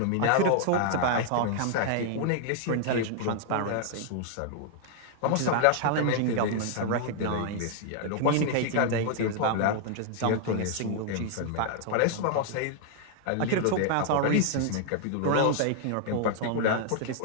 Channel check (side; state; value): both; different; correlation -0.01